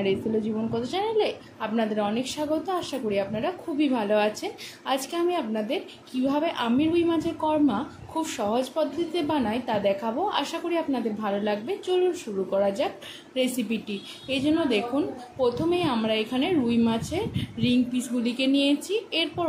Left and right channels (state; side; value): identical; both; correlation 1.00